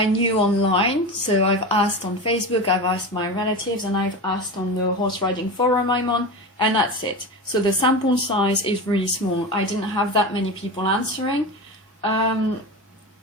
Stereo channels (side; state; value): both; normal; correlation 0.25